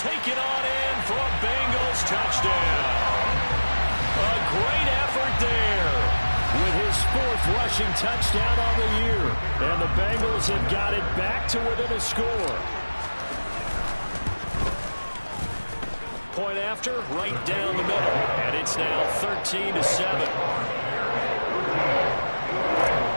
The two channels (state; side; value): inverted; both; correlation -1.00